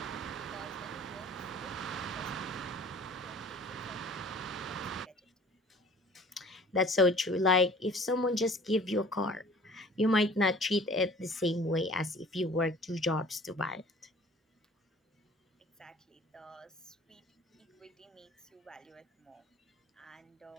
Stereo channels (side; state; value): both; normal; correlation 0.49